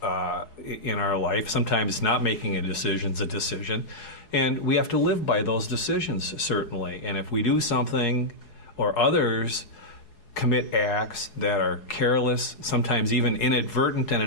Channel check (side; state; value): right; late; 4.7 ms